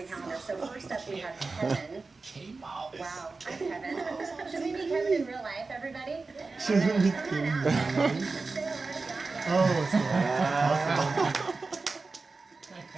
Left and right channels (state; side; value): quieter; left; 3.9 dB